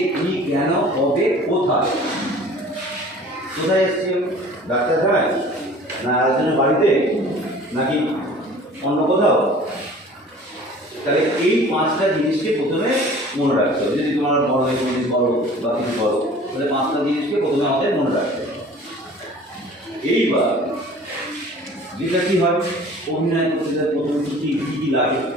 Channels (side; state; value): both; normal; correlation 0.46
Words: কি, কেন, কবে, কোথায়? কোথায় এসেছি? ডাক্তারখানায়, না একজনের বাড়িতে, নাকি অন্য কোথাও? তাহলে এই পাঁচটা জিনিসকে প্রথমে মনে রাখতে হবে। যদি তোমার বড় এক্সপিরিয়েন্স করো বা কিছু করো, তাহলে পাঁচটা জিনিসকে প্রথমে আমাদের মনে রাখতে হবে। এইবার যেটা কী হয়, অভিনয় করতে গেলে প্রথমে কী কী লাগে?